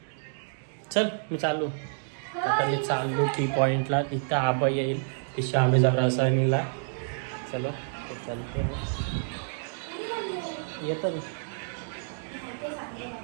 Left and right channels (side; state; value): left; silent; digital silence